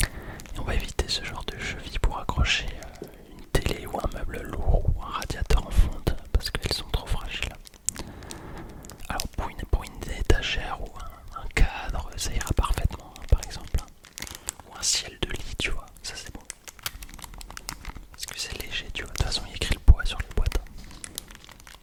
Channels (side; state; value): both; identical; correlation 1.00